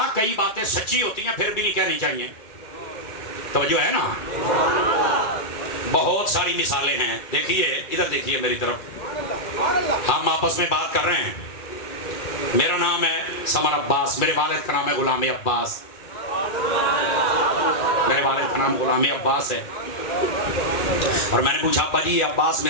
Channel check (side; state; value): right; late; 2.3 ms